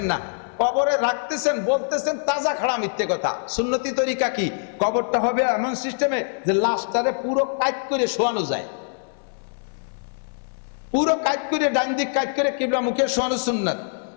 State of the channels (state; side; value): silent; right; digital silence